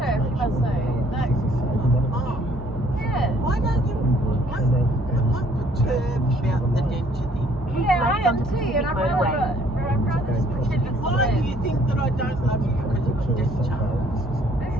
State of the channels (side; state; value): both; normal; correlation 0.62